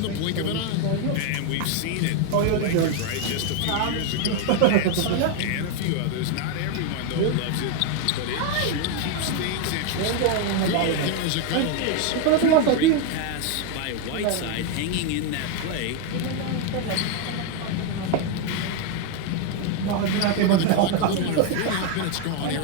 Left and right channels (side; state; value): both; different; correlation 0.01